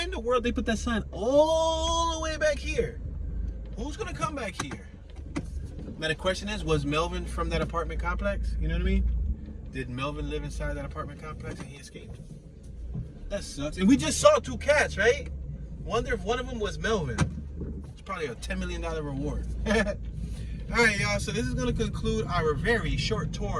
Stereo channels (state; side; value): identical; both; correlation 1.00